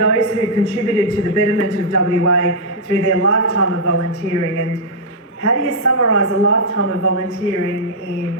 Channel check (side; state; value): both; normal; correlation -0.08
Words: who contributed to the betterment of WA through their lifetime of volunteering. And how do you summarise a lifetime of volunteering in